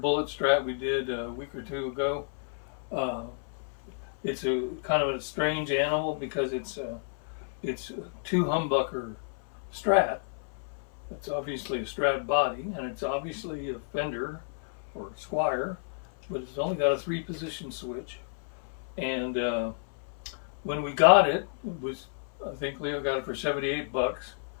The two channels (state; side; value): silent; right; 57 dB below the other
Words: Strat we did a week or two ago. It's a kind of a strange animal because it's a two humbucker Strat. It's obviously a Strat body, and it's obviously a Fender or Squier, but it's only got a 3-position switch. And when we got it, I think Leo got it for 78 bucks.